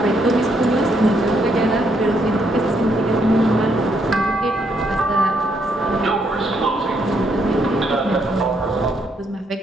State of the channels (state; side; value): normal; both; correlation 0.74